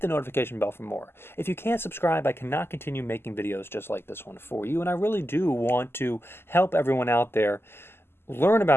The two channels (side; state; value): right; late; 0.12 ms